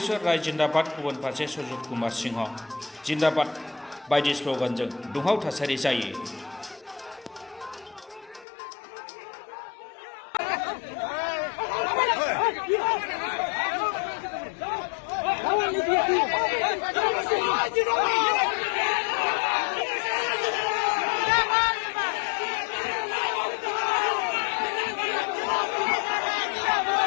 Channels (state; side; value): drops out; right; at 8.5 s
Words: राय जिन्दाबाद, गुबुन फारसे सजन कुमार सिंह जिन्दाबाद बायदि स्ल'गानजों दुंहाव थासारि जायो।